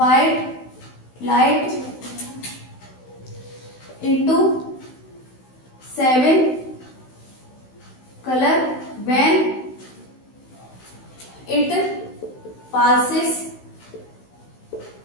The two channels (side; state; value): right; late; 16 ms